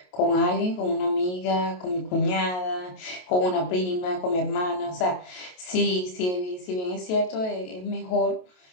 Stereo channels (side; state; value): right; late; 28 ms